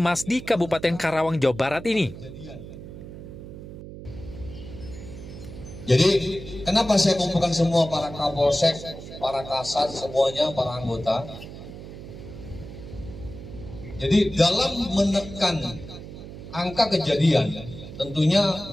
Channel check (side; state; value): right; noise; hum, 13 dB below the sound